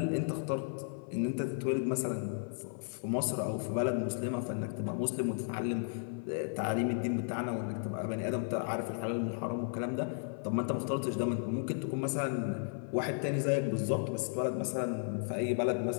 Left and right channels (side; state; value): right; silent; 55 dB below the other